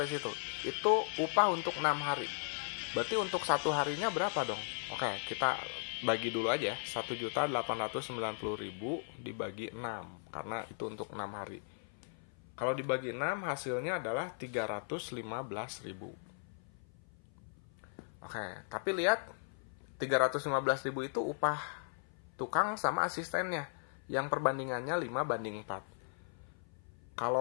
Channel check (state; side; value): silent; right; 53 dB below the other